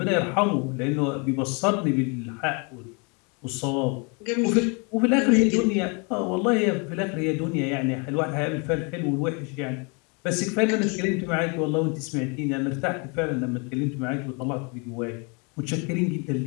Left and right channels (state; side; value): quieter; right; 33.1 dB